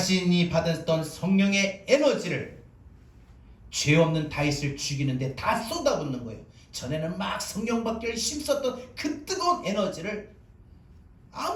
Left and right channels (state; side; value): identical; both; correlation 1.00